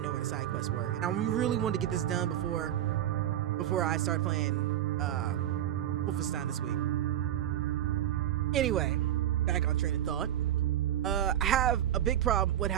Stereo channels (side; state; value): left; quieter; 11.6 dB